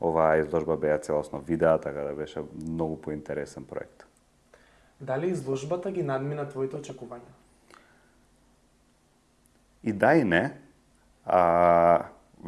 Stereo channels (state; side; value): identical; both; correlation 1.00